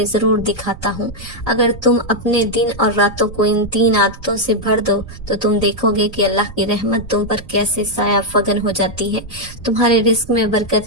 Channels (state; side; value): noise; right; rumble, 16 dB below the sound